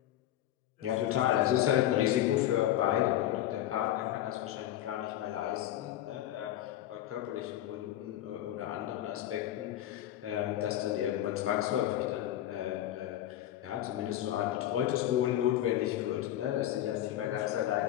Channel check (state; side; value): quieter; right; 12.8 dB